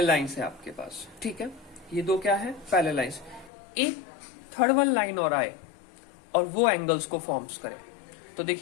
लाइंस है आपके पास। ठीक है, ये दो क्या है? Parallel lines. एक थर्ड वन लाइन और आए और वो एंगल्स को फॉर्म्स करे। तो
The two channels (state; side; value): drops out; right; at 3.5 s